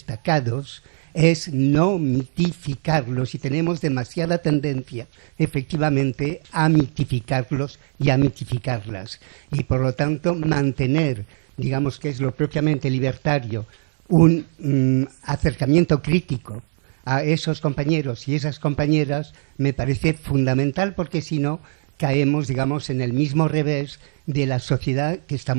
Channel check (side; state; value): left; silent; 65 dB below the other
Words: es no mitificarlos, y tenemos demasiada tendencia, efectivamente, a mitificarlos y a mitificarlas. Y, por lo tanto, mantener, digamos, que es lo propiamente libertario, un acercamiento crítico a esos compañeros y esas compañeras me parece fundamental, porque si no caemos, digamos, en el mismo revés de la sociedad que